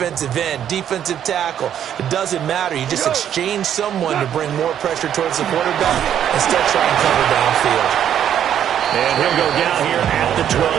end, defensive tackle. It doesn't matter. You just exchange someone to bring more pressure towards the quarterback and still try and cover downfield. And he'll go down here at the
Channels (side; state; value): left; quieter; 9.8 dB